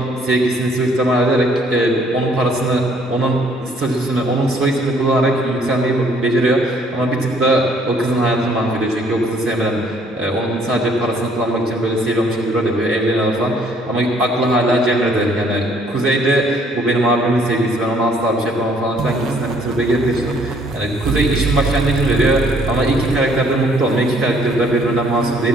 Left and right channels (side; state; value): both; normal; correlation 0.62